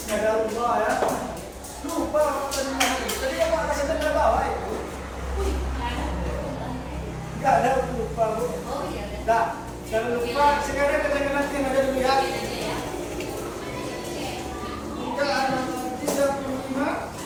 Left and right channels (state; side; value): identical; both; correlation 1.00